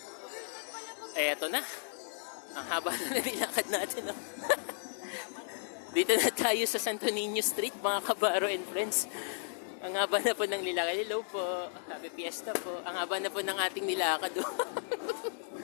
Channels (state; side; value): silent; right; digital silence